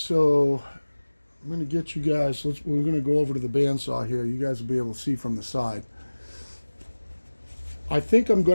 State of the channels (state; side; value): inverted; both; correlation -1.00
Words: I'm going to get you guys, we're going to go over to the bandsaw here. You guys will be able to see from the side. I think I'm